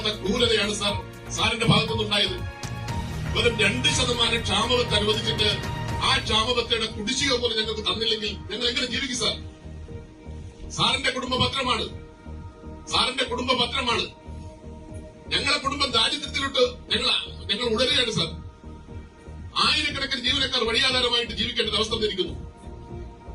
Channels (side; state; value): both; identical; correlation 1.00